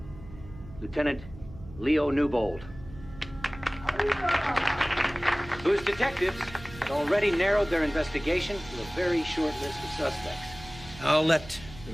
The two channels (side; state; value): right; noise; hum, 16 dB below the sound